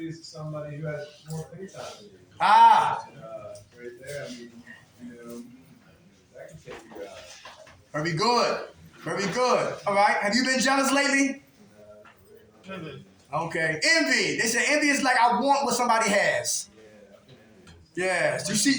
of somebody who has more free time than you. Right there, I mean, that can take you out. Very good. Very good. All right. Have you been jealous lately? Okay. Envy. They say envy is like I want what somebody has. Yeah. You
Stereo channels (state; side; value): identical; both; correlation 1.00